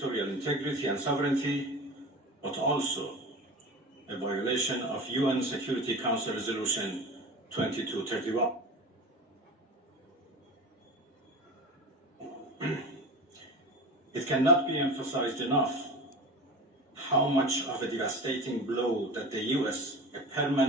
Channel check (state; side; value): normal; both; correlation 0.32